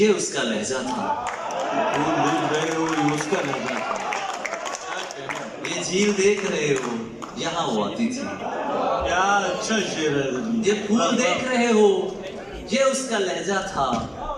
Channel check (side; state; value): both; identical; correlation 1.00